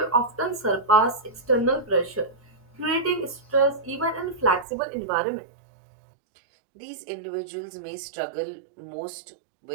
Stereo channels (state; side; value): drops out; left; at 4.7 s